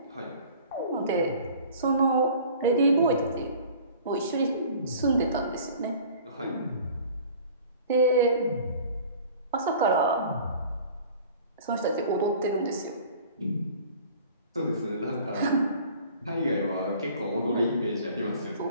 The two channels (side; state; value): both; inverted; correlation -0.47